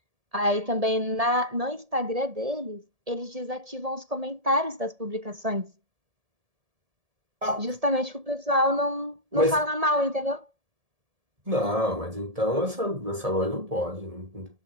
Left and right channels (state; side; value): late; left; 1.7 ms